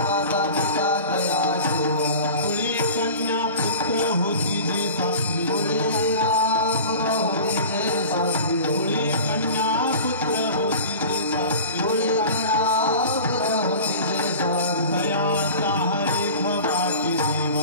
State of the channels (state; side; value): inverted; both; correlation -0.38